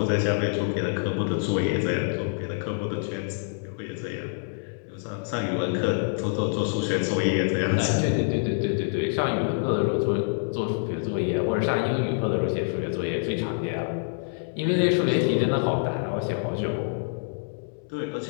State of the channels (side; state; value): right; silent; digital silence